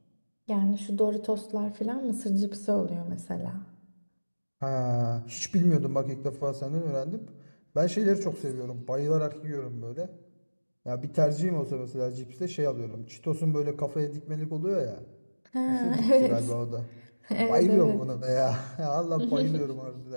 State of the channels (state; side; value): inverted; both; correlation -1.00